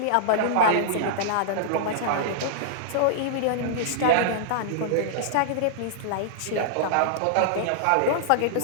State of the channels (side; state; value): both; different; correlation -0.02